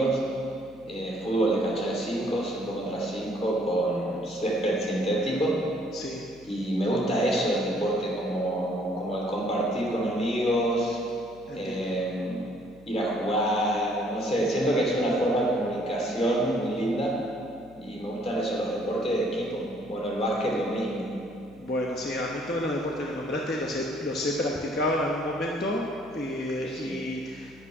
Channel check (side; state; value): left; noise; hum, 24 dB below the sound